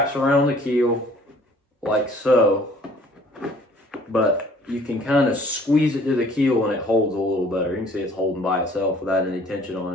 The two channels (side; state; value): both; normal; correlation 0.55